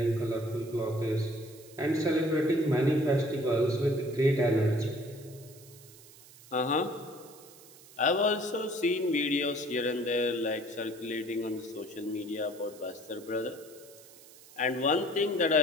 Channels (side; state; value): right; noise; hiss, 21 dB below the sound